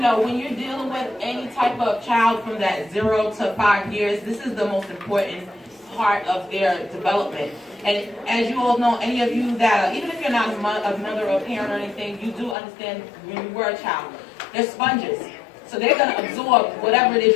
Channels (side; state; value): right; drops out; at 12.6 s